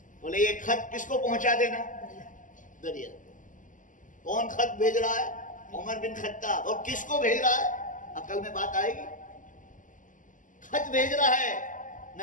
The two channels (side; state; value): right; late; 0.38 ms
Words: بولے یہ خط کس کو پہنچا دینا؟ دریا۔ کون خط بھیج رہا ہے؟ عمر بن خطاب۔ اور کس کو بھیج رہا ہے؟ عقل میں بات آئے گی؟ خط بھیج رہا ہے